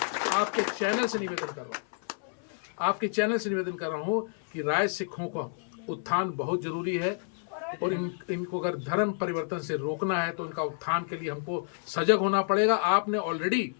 आपके चैनल से निवेदन कर रहा हूँ कि राय सिखों का उत्थान बहुत जरूरी है, और इनको अगर धर्म परिवर्तन से रोकना है तो इनका उत्थान के लिए हमको सजग होना पड़ेगा। आपने ऑलरेडी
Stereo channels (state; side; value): silent; right; 58 dB below the other